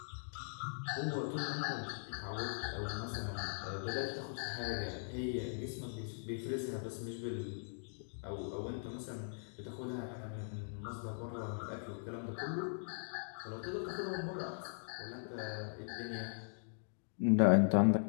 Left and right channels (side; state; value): right; silent; digital silence